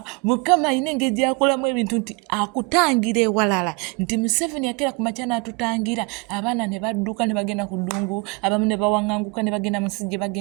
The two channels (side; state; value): left; quieter; 29.5 dB